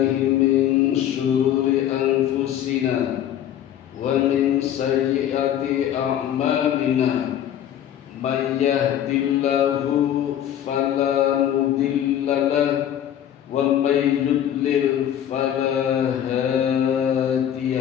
min syururi anfusina wa min sayyiati a'malina. May yahdihillahu fala mudilla lahu wa may yudlil fala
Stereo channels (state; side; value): quieter; right; 10.6 dB